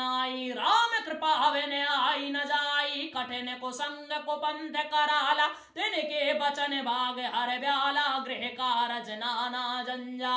राम कृपा बिन आई न जाई कठिन को संग को पंथ कराला तिनके बचन भाग हर ब्याला गृह कारज नाना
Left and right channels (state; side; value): identical; both; correlation 1.00